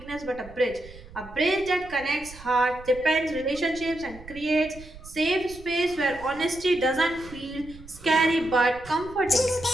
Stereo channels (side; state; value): right; noise; rumble, 18 dB below the sound